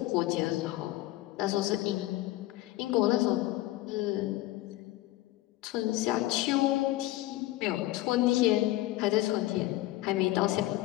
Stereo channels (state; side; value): quieter; right; 16.9 dB